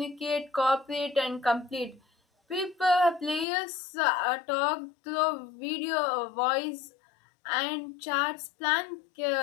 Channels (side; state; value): right; drops out; at 3.5 s